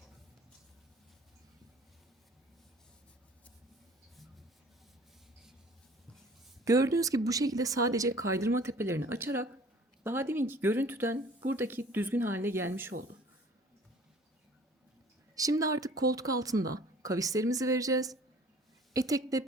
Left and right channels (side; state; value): both; normal; correlation 0.50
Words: Gördüğünüz gibi bu şekilde sadece kaydırma tepelerini açarak daha deminki görüntüden buradaki düzgün haline gelmiş oldu. Şimdi artık koltuk altında kavislerimizi vereceğiz.